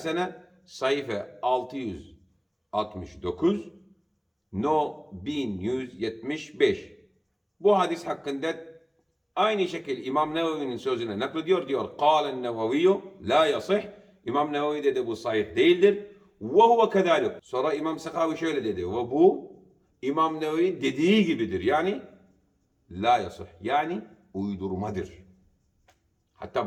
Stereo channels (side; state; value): both; identical; correlation 1.00